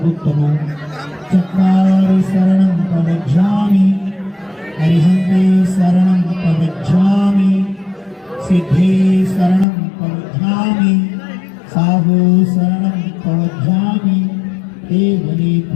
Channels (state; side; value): drops out; right; at 9.7 s